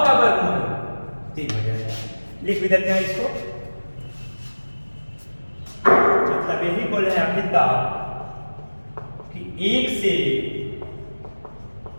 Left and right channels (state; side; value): inverted; both; correlation -1.00